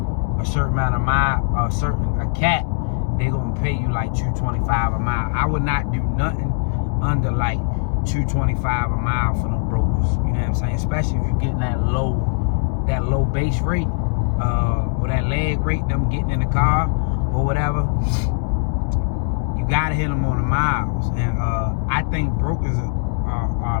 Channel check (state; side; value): silent; right; digital silence